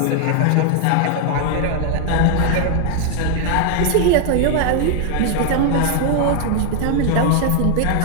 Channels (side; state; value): both; different; correlation 0.00